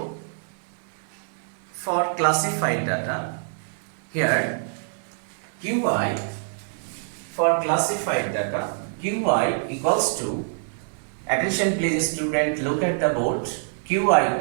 for classified data, here QI for classified data, QI equals to, attention please student, look at the board, QI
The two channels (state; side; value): silent; left; digital silence